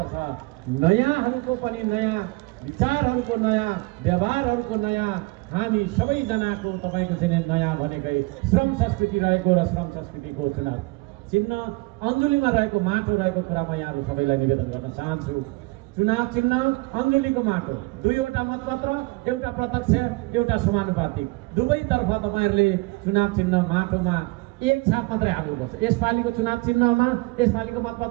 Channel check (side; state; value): left; quieter; 24.4 dB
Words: नयाँहरूको पनि नयाँ विचारहरूको, नयाँ व्यवहारहरूको नयाँ, हामी सबैजनाको तपाईँको चाहिँ नयाँ भनेकै श्रम संस्कृति रहेको र श्रम संस्कृतिको चुनाव चिन्ह अञ्जुलीमा रहेको माटो रहेको कुरा म यहाँहरू सबैलाई निवेदन गर्न चाहन्छु। चुनाव चिन्ह अञ्जुलीको माटो, 2वटा मतपत्र, एउटा प्रत्यक्ष, एउटा समानुपातिक, दुवैतर्फ तपाईँहरूले चुनाव चिन्ह माटोमा एक छाप मात्रै हाल्नुपर्छ। यसपालिको चुनाव चिन्हमा, यसपालिको